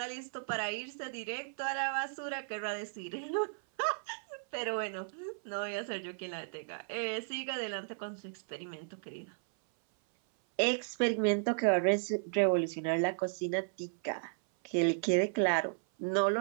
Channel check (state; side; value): silent; left; 55 dB below the other